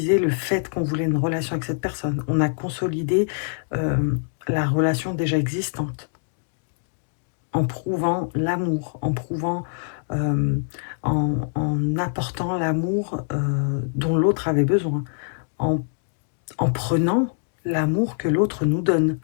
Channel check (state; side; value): silent; right; digital silence